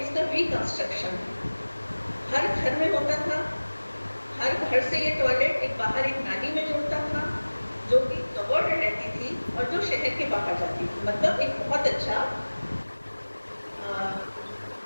उसका रिकंस्ट्रक्शन है। हर घर में होता था, हर घर से ये टॉयलेट एक बाहर एक नाली में जुड़ता था जो कि कवर्ड रहती थी और जो शहर के बाहर जाती थी। मतलब एक बहुत अच्छा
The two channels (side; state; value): both; inverted; correlation -1.00